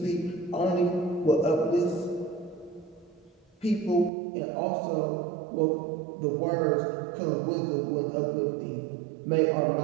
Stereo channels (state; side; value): drops out; left; at 4.1 s